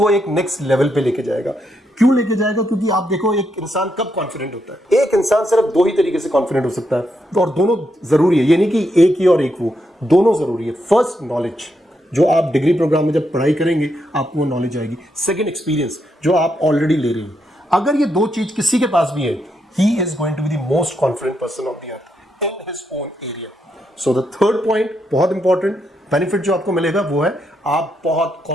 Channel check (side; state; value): both; normal; correlation 0.80